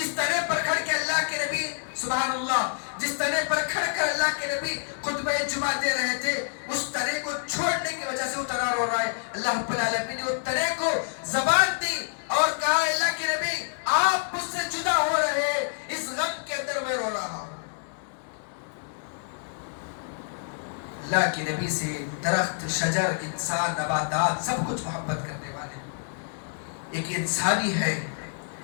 تنے پر کھڑ کے اللہ کے نبی سبحان اللہ، جس تنے پر کھڑ کر اللہ کے نبی خطبہ جمعہ دے رہے تھے، اس تنے کو چھوڑنے کی وجہ سے وہ تنا رو رہا ہے۔ اللہ رب العالمین نے اس تنے کو زبان دی اور کہا اللہ کے نبی آپ مجھ سے جدا ہو رہے اللہ کے نبی سے درخت، شجر، انسان، نباتات سب کچھ محبت کرنے والے. ایک انسانی ہے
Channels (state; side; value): silent; right; digital silence